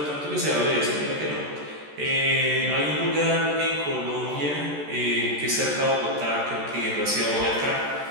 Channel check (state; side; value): late; left; 14 ms